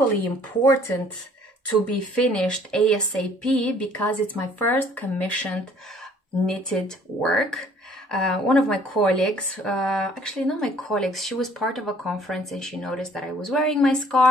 important to be finished ASAP, because it's my first commissioned knitted work. One of my colleagues, actually not my colleagues, she was part of a conference and she noticed that I was wearing my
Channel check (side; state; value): both; normal; correlation 0.57